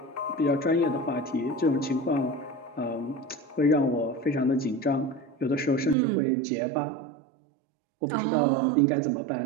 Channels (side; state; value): left; drops out; at 6.0 s